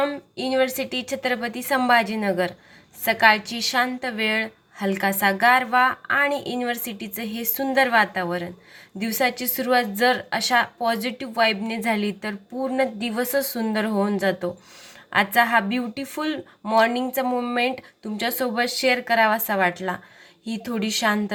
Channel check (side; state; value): both; identical; correlation 1.00